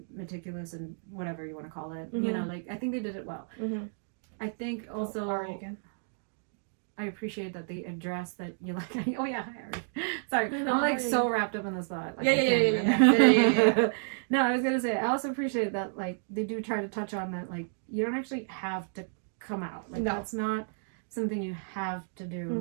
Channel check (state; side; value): silent; left; digital silence